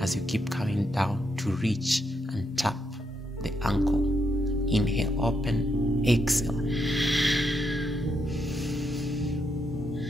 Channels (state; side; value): normal; both; correlation 0.80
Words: as you keep coming down to reach and tap the ankle. Inhale, open, exhale.